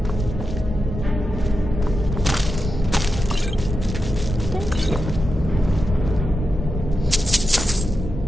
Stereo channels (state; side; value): normal; both; correlation 0.89